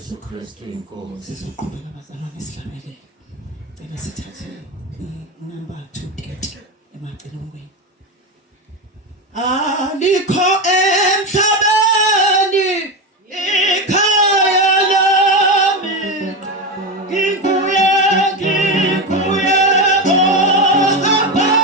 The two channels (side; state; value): both; normal; correlation 0.16